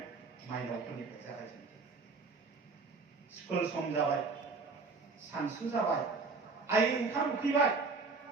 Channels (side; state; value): left; quieter; 4.3 dB